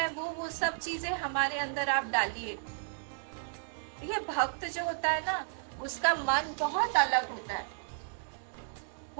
वो सब चीजें हमारे अंदर आप डालिए। देखिए, भक्त जो होता है ना, उसका मन बहुत अलग होता है।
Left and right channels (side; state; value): left; silent; digital silence